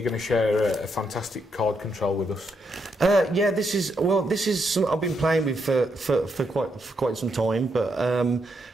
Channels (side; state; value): both; normal; correlation 0.79